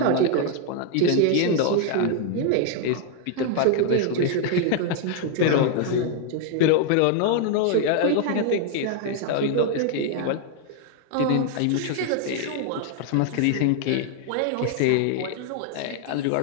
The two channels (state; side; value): different; both; correlation 0.00